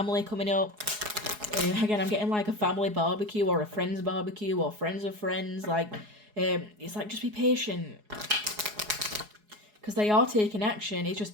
coming up. Again, I'm getting like a family barbecue or a friend's barbecue or friends of friends, like It's like, just be patient. Because they are taking action. It's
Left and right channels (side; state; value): left; late; 4.8 ms